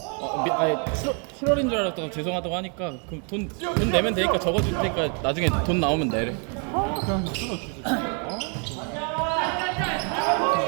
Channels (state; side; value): quieter; left; 38.5 dB